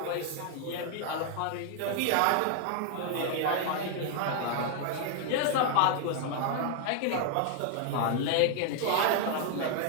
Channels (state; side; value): different; both; correlation 0.00